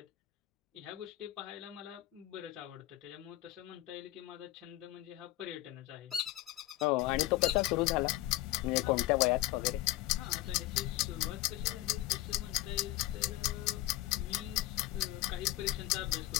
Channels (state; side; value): quieter; right; 16.4 dB